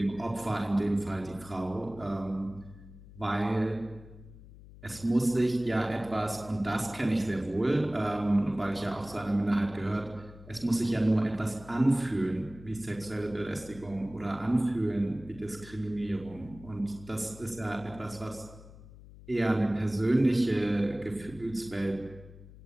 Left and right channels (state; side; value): noise; left; hum, 18 dB below the sound